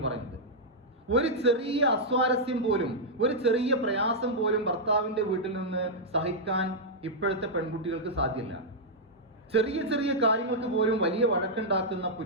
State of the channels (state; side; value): normal; both; correlation -0.07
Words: പറയുന്നത്. ഒരു ചെറിയ അസ്വാരസ്യം പോലും, ഒരു ചെറിയ പ്രയാസം പോലും ഭർത്താവിന്റെ വീട്ടിൽ നിന്ന് സഹിക്കാൻ ഇപ്പോഴത്തെ പെൺകുട്ടികൾക്ക് സാധ്യമല്ല. ചെറിയ ചെറിയ കാര്യങ്ങൾക്ക് പോലും വലിയ വഴക്കുണ്ടാക്കുന്ന